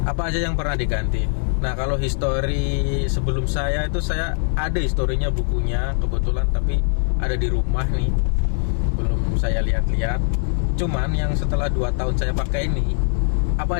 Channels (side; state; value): right; silent; digital silence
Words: apa aja yang pernah diganti? Nah kalau histori sebelum saya itu, saya ada historinya bukunya kebetulan, tapi ada di rumah nih, belum saya lihat-lihat. Cuman yang setelah 2 tahun saya pakai ini,